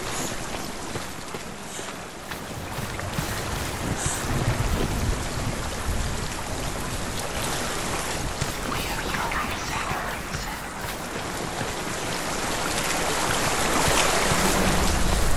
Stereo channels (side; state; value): both; identical; correlation 1.00